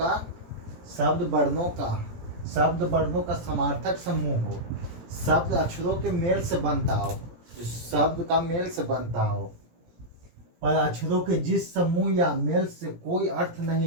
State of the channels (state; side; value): late; left; 17 ms